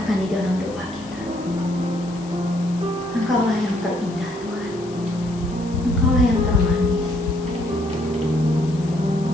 di dalam doa kita, Engkaulah yang terindah Tuhan, Engkaulah yang termanis.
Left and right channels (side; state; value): left; noise; hiss, 21 dB below the sound